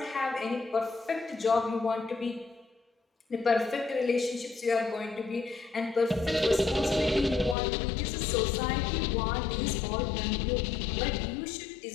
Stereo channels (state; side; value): drops out; right; at 7.6 s